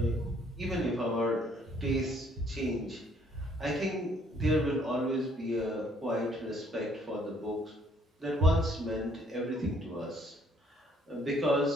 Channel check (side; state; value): both; normal; correlation 0.64